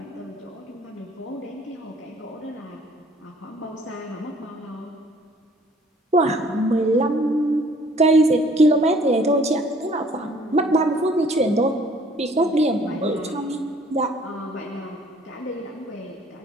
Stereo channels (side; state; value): both; normal; correlation 0.57